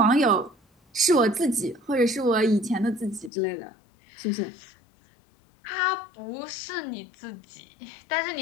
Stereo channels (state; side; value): drops out; right; at 3.3 s